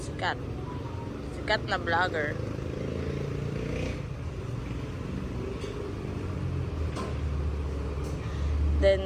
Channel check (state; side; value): identical; both; correlation 1.00